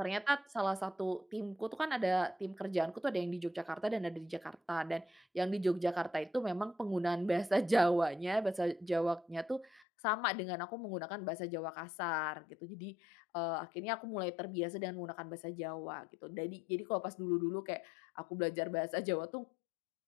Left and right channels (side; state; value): right; drops out; at 9.9 s